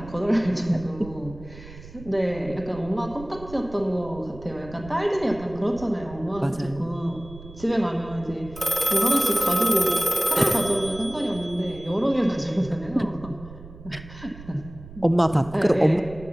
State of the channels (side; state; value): right; noise; rumble, 16 dB below the sound